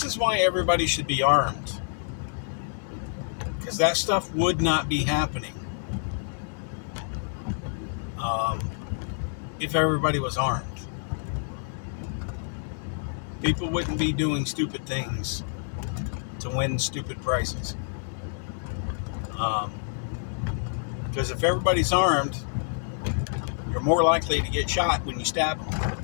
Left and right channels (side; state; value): right; silent; digital silence